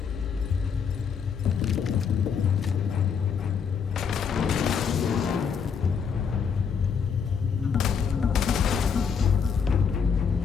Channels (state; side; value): quieter; right; 6.6 dB